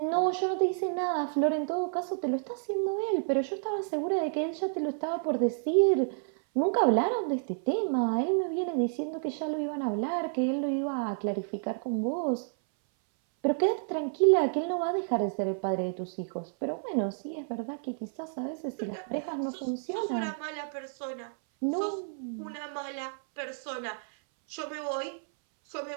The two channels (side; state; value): left; silent; 58 dB below the other